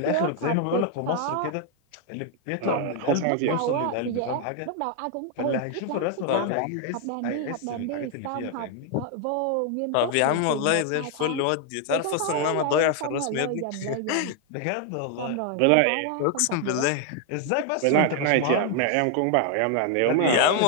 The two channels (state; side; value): different; both; correlation 0.00